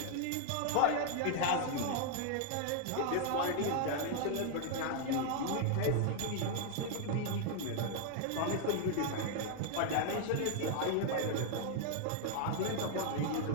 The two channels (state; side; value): different; both; correlation 0.00